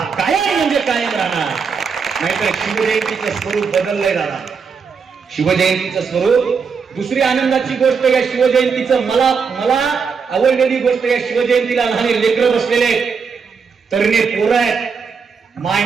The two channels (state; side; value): quieter; left; 5.7 dB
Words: कायम म्हणजे कायम राहणार. नाहीतर शिवजयंतीचं स्वरूप बदललंय दादा, शिवजयंतीचं स्वरूप. दुसरी आनंदाची गोष्ट या शिवजयंतीचं मला आवडलेली गोष्ट, या शिवजयंतीला लहान लेकरं बसलेले, तरणे पोरं आहेत, माय